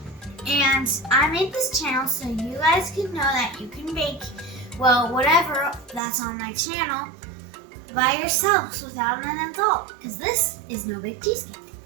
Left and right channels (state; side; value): drops out; left; at 6.0 s